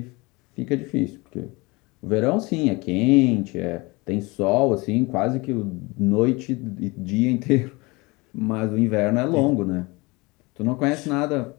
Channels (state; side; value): quieter; right; 24.9 dB